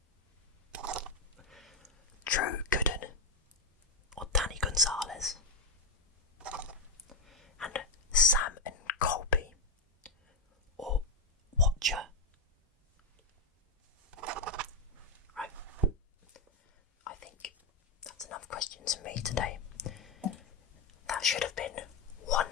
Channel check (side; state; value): right; quieter; 3.5 dB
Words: Drew Gooden or Danny Gonzalez, and Sam and Colby or Watcher. Right, I think that's enough questions for me today. That should have been